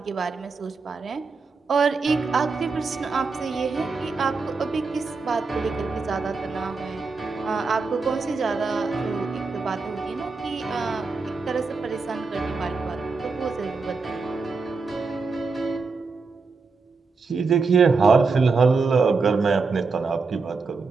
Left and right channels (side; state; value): left; quieter; 4.4 dB